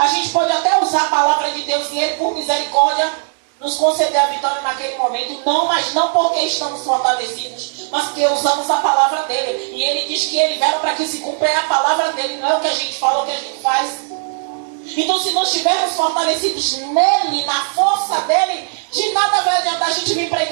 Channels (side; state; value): left; silent; 66 dB below the other